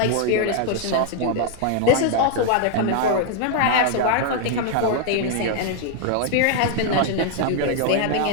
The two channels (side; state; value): both; different; correlation 0.00